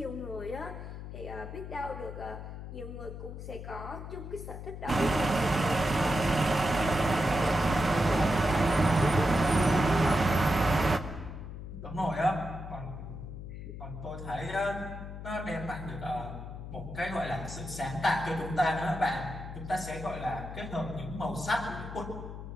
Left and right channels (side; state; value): left; noise; hum, 9 dB below the sound